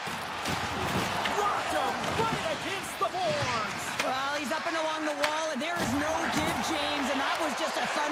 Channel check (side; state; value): both; identical; correlation 1.00